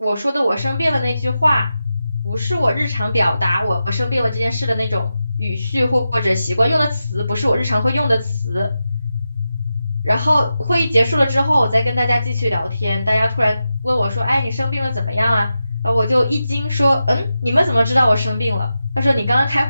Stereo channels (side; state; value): both; inverted; correlation -0.90